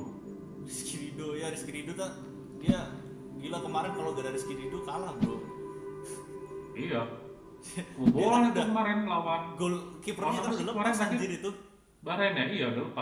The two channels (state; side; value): identical; both; correlation 1.00